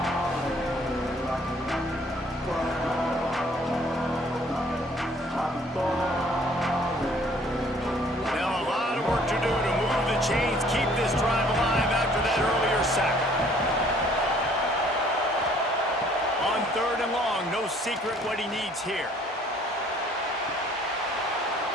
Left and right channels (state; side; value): normal; both; correlation 0.58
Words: Chains keep this drive alive after that earlier sack. On 3rd and long, no secret what he needs here.